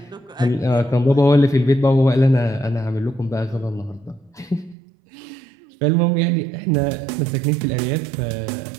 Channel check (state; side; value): drops out; left; at 4.8 s